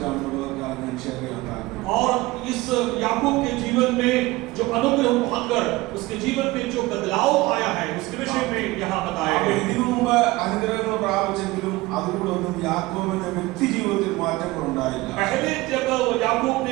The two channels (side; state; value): left; quieter; 20.0 dB